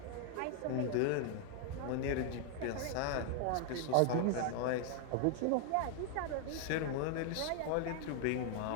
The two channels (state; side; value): different; both; correlation 0.00